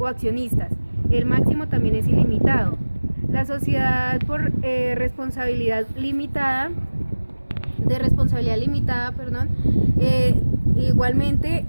accionistas. El máximo también es ilimitado. La sociedad por responsabilidad limitada, igualmente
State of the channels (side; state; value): both; inverted; correlation -1.00